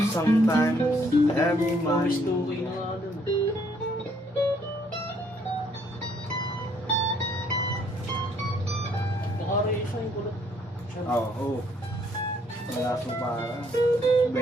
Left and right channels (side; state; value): both; normal; correlation 0.66